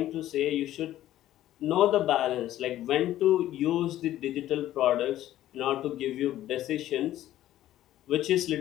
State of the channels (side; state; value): right; quieter; 13.5 dB